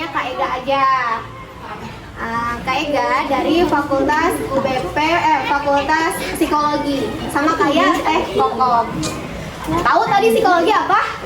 Kak Ega aja. Kak Ega dari Fakultas Fakultas Psikologi. Sama kayak Kokom. Tahu tadi psikologi apa?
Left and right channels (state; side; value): identical; both; correlation 1.00